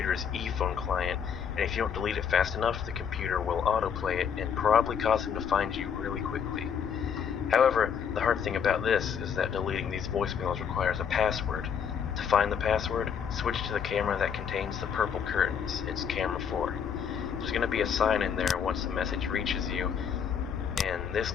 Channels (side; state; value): right; quieter; 7.5 dB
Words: e-phone client, and if you don't delete it fast enough, the computer will autoplay it and probably cause him to find you really quickly. However, the hard thing about this is that deleting these voicemails requires a password. To find the password, switch to the camera that contains the purple curtains. It's camera 4. There's going to be a sign in there once the message reaches you, and this